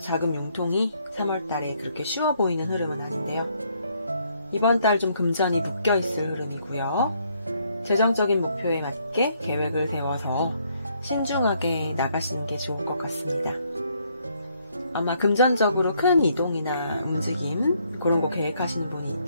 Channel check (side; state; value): both; inverted; correlation -0.70